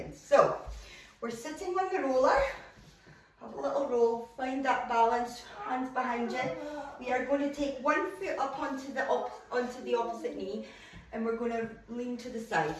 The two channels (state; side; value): identical; both; correlation 1.00